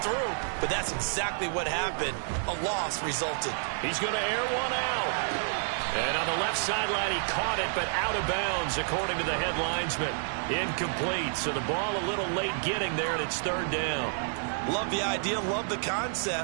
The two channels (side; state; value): left; silent; digital silence